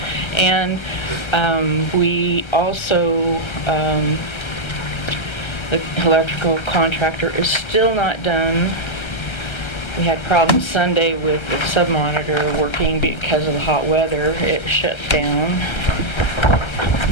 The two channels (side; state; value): right; late; 1.3 ms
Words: And we also, the electrical contractor is still not done. We had problems Sunday with the sub-monitor working because of the hot weather. It shut down.